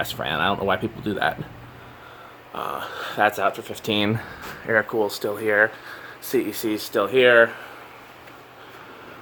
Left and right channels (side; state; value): both; identical; correlation 1.00